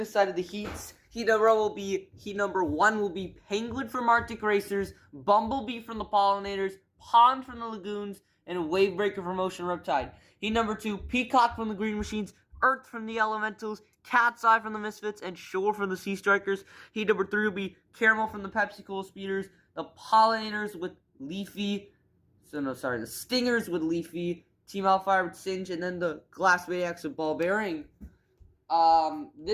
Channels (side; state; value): both; identical; correlation 1.00